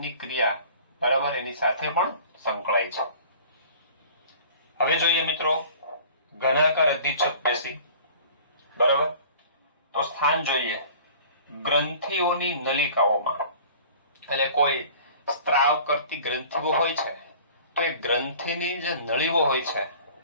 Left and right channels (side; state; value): both; inverted; correlation -0.47